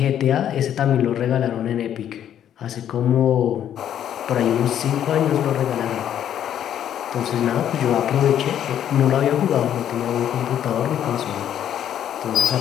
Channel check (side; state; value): right; quieter; 10.2 dB